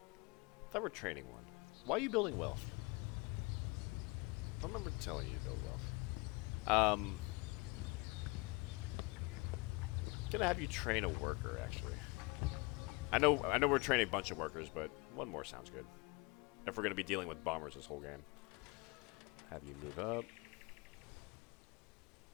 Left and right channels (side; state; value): right; quieter; 26.3 dB